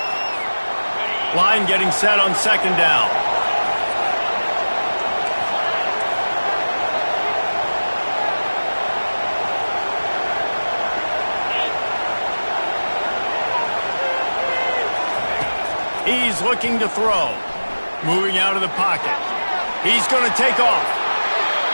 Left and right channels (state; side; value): inverted; both; correlation -1.00